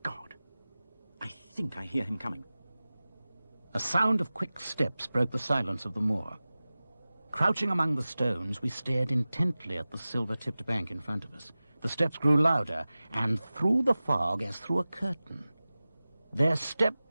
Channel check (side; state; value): both; inverted; correlation -0.97